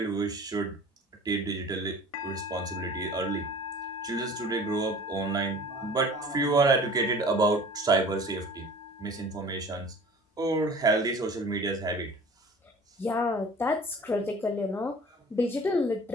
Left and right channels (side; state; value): both; normal; correlation 0.44